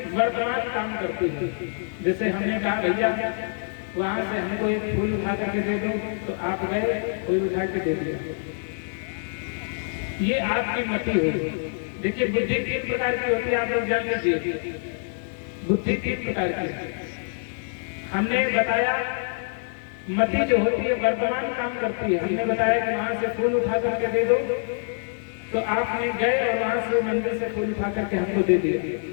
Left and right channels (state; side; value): silent; right; digital silence